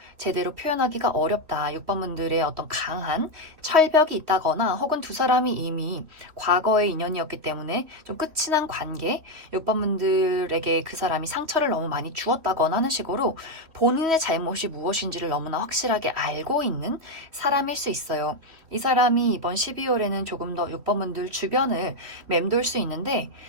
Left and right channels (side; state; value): left; late; 3.0 ms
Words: 제대로 표현하기가 어렵다. 6번분들의 어떤 강한 철벽이 있다거나 혹은 두 사람이 이미 과거의 인연이었기 때문에 좀 끝이 난 관계, 6번분들에게 그 사람이 상처를 너무 많이 주었다거나 하는 식으로 본인의 잘못이 무엇인지를 너무나 확실하게 알고 있는 사람일 수 있어요. 이 사람이 이번 12월에는 조금 더 6번분들 주변을 맴돌 수 있는데